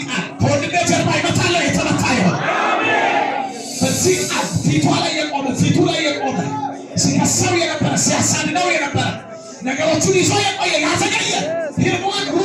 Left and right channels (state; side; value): identical; both; correlation 1.00